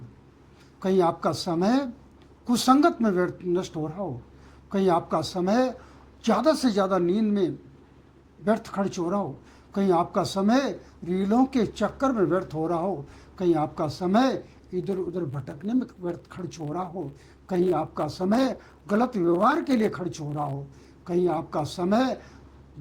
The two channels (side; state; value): both; identical; correlation 1.00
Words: कहीं आपका समय कुसंगत में व्यर्थ नष्ट हो रहा हो? कहीं आपका समय ज़्यादा से ज़्यादा नींद में व्यर्थ खर्च हो रहा हो? कहीं आपका समय रीलों के चक्कर में व्यर्थ हो रहा हो? कहीं आपका समय इधर उधर भटकने में व्यर्थ खर्च हो रहा हो? कहीं आपका समय गलत व्यवहार के लिए खर्च हो रहा हो? कहीं आपका समय